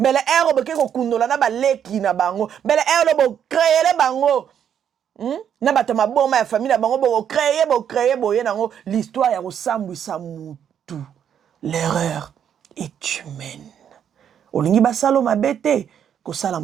les héros, bon, qui ont kundola na ba leki na bango. Mais les héros, bon, créer les bango. Na ba tama bon, ma famille na bango, bon, créer, bon, yango. L'histoire, y'a sambu samutu. L'erreur est humaine. Olingi basalo ma bete. Ko sala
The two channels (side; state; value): left; quieter; 8.8 dB